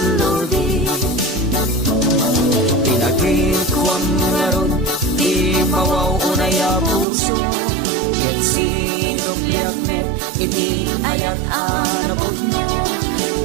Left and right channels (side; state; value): left; drops out; at 7.1 s